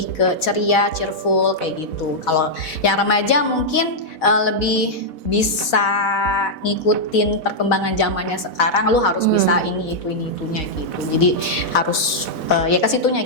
ke ceria, cheerful kayak gitu. Kalau yang remaja mungkin lebih bisa ngikutin perkembangan zamannya sekarang, lu harus bisa ini itunya gitu. Jadi harus ya ke situnya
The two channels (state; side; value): late; right; 4.1 ms